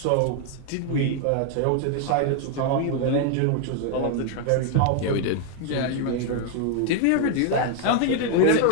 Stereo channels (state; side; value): different; both; correlation 0.00